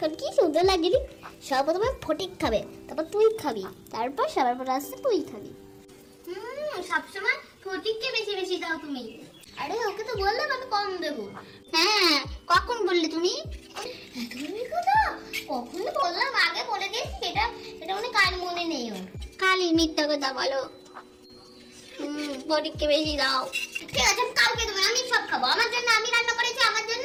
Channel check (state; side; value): identical; both; correlation 1.00